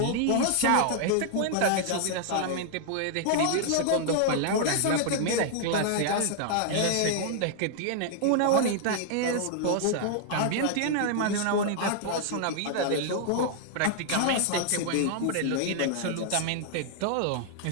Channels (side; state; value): both; different; correlation -0.01